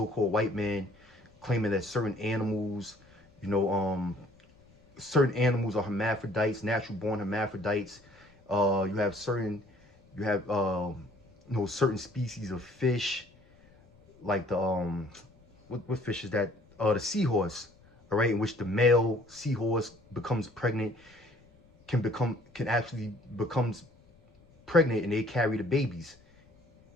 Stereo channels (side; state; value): left; noise; rumble, 29 dB below the sound